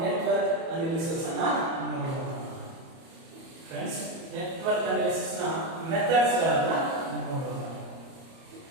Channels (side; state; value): left; late; 30 ms